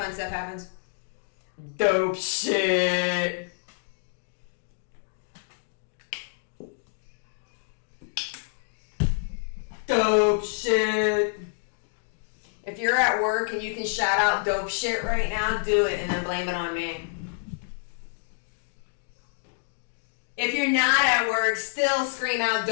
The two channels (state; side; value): silent; right; digital silence